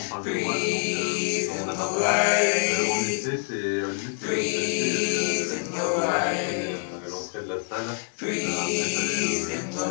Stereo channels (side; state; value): right; silent; 57 dB below the other